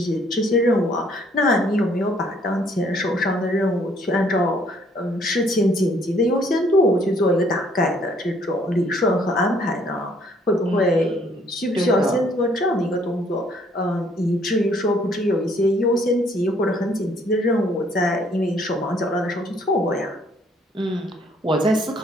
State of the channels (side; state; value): both; normal; correlation 0.63